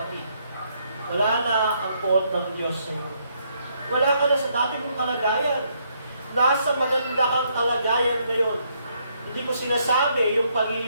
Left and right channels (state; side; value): inverted; both; correlation -0.73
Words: Wala na ang poot ng Diyos sa iyo. Wala ka na sa dati mong kalagayan. Nasa maganda kang kalagayan ngayon. Hindi ko sinasabi yung